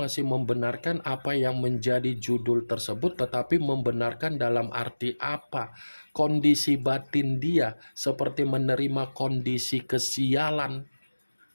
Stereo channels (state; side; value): inverted; both; correlation -1.00